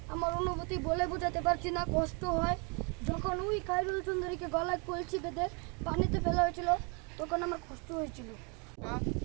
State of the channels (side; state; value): left; quieter; 33.6 dB